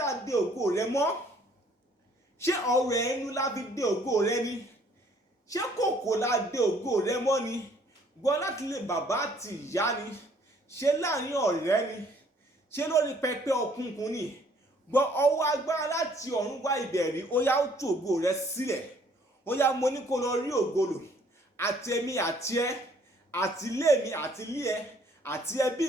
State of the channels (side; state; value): both; normal; correlation 0.61